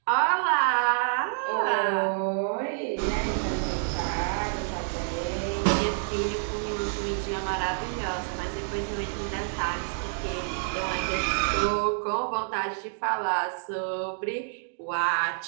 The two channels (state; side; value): silent; left; digital silence